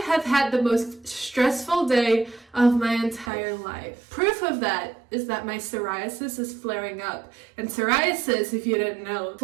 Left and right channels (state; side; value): drops out; left; at 3.3 s